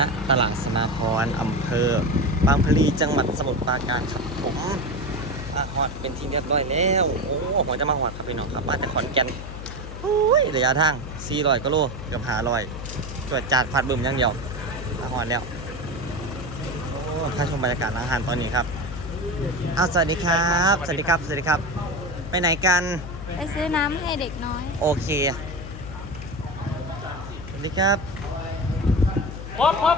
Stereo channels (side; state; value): left; noise; hum, 10 dB below the sound